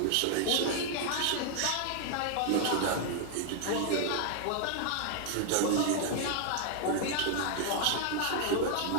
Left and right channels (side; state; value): both; different; correlation 0.00